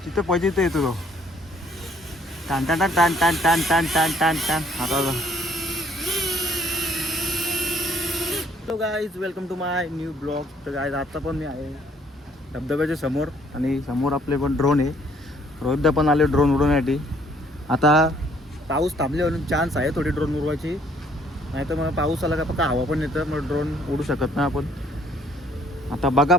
तिथे पाहिजे ते येतो टान टान टान टान टान टान टान टान टान. आता hello guys, welcome to my new blog. तर गाईज आता पण मी आहे धबधब्याच्या समोर आणि समोर आपले पण ड्रोन आहे. रोहितदा पण आले ड्रोन उडवण्यासाठी. आता पाऊस थांबले म्हणून चान्स आहे थोडी ड्रोन उडवायची, नाही तर मग पाऊस आला का फक्त हवा पण येतं, मग ड्रोन उडू शकत नाही आपण. आता बघा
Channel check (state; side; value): normal; both; correlation 0.63